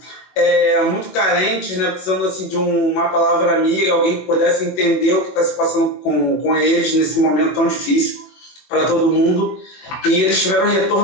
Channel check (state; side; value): late; right; 21 ms